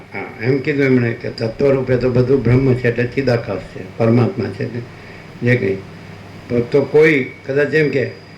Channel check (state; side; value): identical; both; correlation 1.00